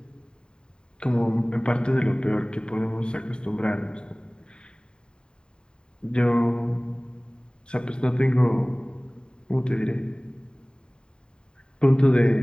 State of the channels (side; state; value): right; late; 0.049 ms